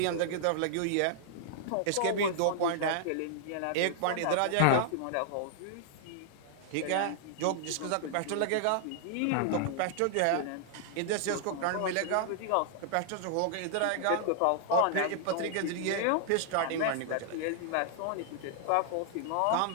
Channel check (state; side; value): different; both; correlation -0.01